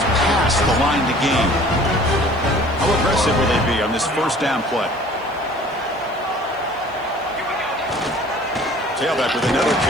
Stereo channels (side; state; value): right; noise; hiss, 30 dB below the sound